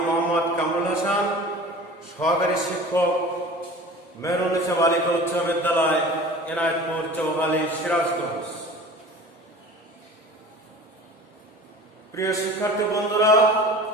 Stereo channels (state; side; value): normal; both; correlation 0.40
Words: মোহাম্মদ কামরুল হাসান, সহকারী শিক্ষক, মেহরুন্নেছা বালিকা উচ্চ বিদ্যালয়, এনায়েতপুর, চৌহালি, সিরাজগঞ্জ। প্রিয় শিক্ষার্থী বন্ধুরা,